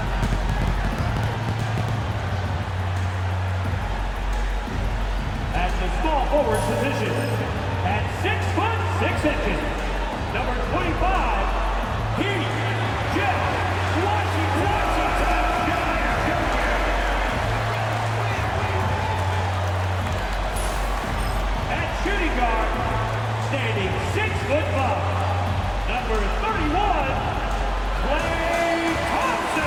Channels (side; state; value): both; identical; correlation 1.00